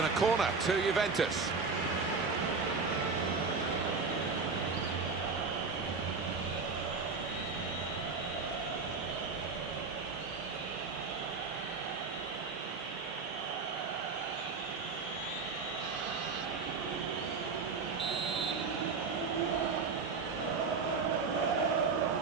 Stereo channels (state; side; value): quieter; left; 4.7 dB